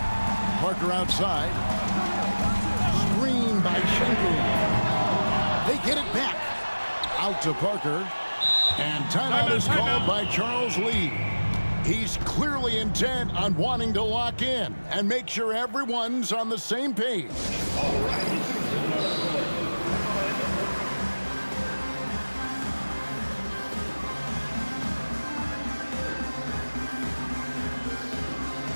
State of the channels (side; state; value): both; inverted; correlation -1.00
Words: Parker outside. Screen by Sengun. They get it back. Out to Parker. And timeout is called by Charles Lee. He's clearly intent on wanting to lock in and make sure everyone's on the same page. All right.